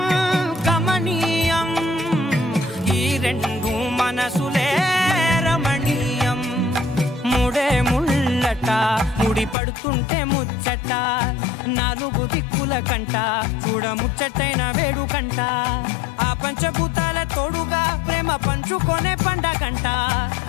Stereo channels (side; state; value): right; drops out; at 9.6 s